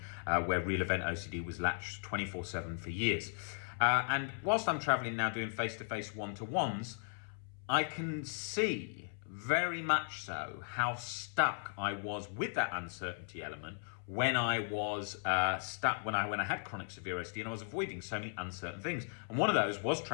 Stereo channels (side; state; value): right; silent; 53 dB below the other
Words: where real event OCD was latched 24/7 for years. And whilst I'm traveling now doing face-to-face one-to-ones, I can see very much so how stuck I was with that uncertainty element when I was stuck, when I had chronic severe OCD, and I was avoiding so many uncertain things. And one of those was